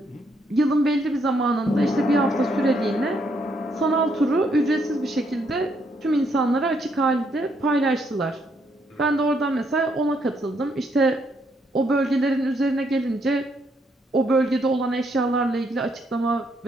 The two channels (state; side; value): normal; both; correlation 0.73